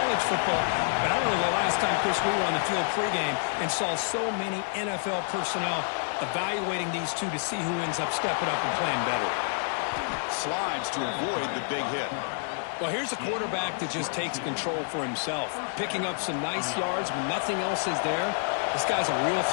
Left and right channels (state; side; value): silent; right; digital silence